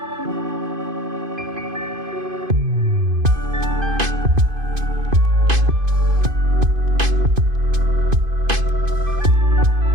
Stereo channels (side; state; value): left; late; 2.5 ms